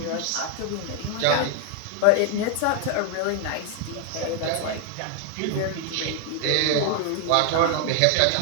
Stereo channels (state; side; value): different; both; correlation 0.00